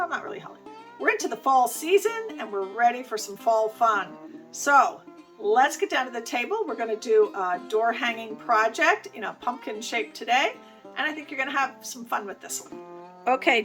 not really holiday. We're into the fall season and we're ready for some fall fun. So let's get down to the table. We're going to do a door hanging project in a pumpkin shape today, and I think you're going to have some fun with this one. Okay,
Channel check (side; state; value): both; identical; correlation 1.00